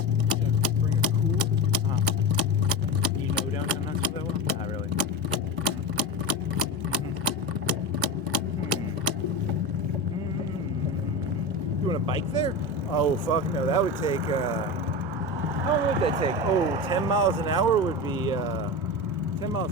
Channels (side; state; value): both; normal; correlation 0.23